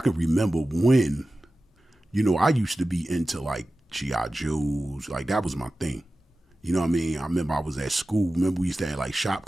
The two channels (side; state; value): both; normal; correlation 0.95